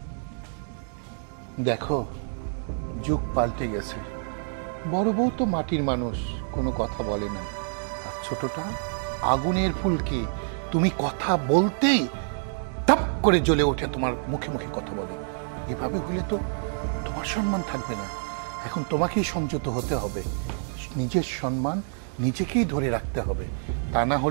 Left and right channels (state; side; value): silent; left; 60 dB below the other